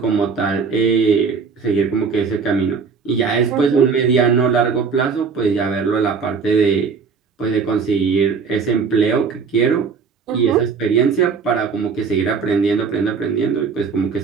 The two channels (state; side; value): quieter; left; 5.5 dB